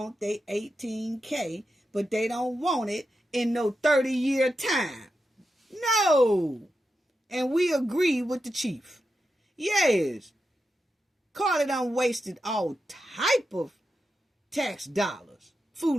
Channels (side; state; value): both; normal; correlation 0.88